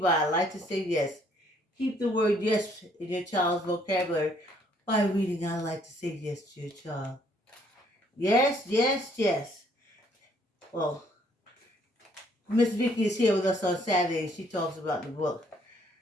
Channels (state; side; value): normal; both; correlation 0.65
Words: I Like to Say Yes. Keep the word yes in your child's vocabulary by reading I Like to Say Yes to your child. Yes, yes, yes. Well, Miss Vicky is here with us on Saturday and she talks about the book.